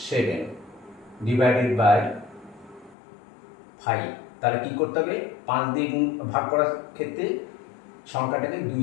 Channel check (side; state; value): right; drops out; at 3.0 s